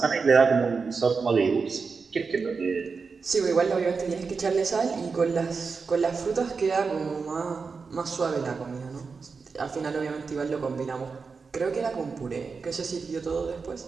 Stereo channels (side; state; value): left; quieter; 4.9 dB